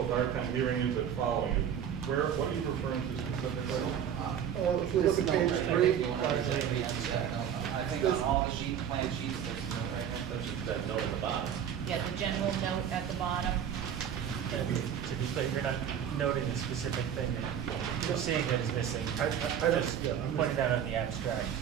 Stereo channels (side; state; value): left; quieter; 8.8 dB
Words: hard time hearing you but following you. What are you referring to specifically? If you look at page If 3, you want to read that, no, I think on all the plan sheets, there's no right hand touch. That note at the bottom. Yeah, the general note at the bottom. To be clear, you're not noting a specific thing that you're seeing that is missing. I don't- Just yeah, I'm pointing out on the abstract.